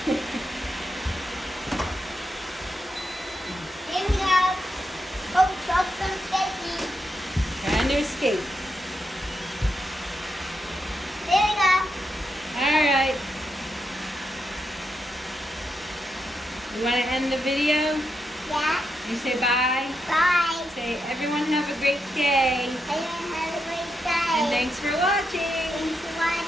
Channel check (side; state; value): both; normal; correlation 0.83